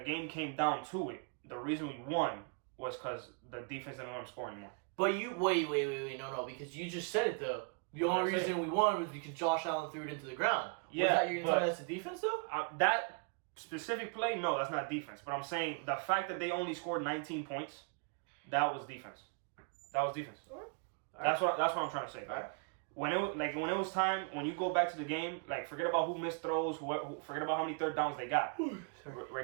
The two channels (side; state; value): left; quieter; 39.0 dB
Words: game came down to it, the reason we won was because the defense didn't let them score anymore. But you wait, no, because you just said it though. The only reason we won was because Josh Allen threw it into the ground. Yeah, was that you're gonna tell me that's the defense though? That specific play, no, that's not defense. But I'm saying the fact that they only scored 19 points, that was defense. That was defense. All right. That's what I'm trying to say. Right? When it was time, when you go back to the game, like forget about who missed throws, forget about how many third downs they got.